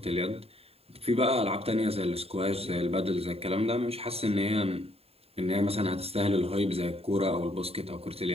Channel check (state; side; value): late; left; 0.29 ms